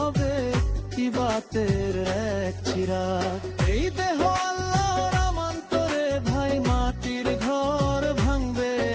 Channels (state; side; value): identical; both; correlation 1.00